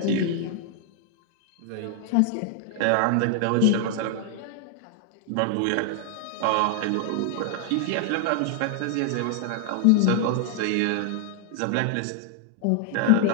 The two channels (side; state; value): both; different; correlation 0.00